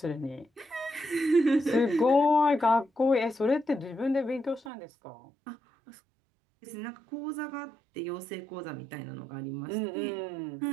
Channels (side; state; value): left; drops out; at 4.7 s